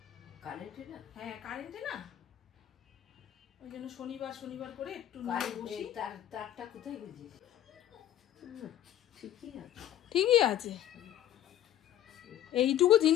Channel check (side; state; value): right; quieter; 11.9 dB